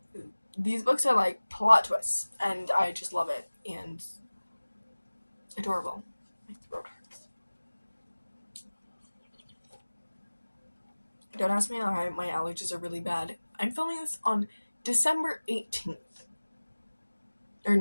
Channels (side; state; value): both; inverted; correlation -1.00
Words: These books are like plot twists, and I just love it, and adorable. My throat hurts. Don't ask me why my allergies are really bad. I'm filming this on December 18th. Or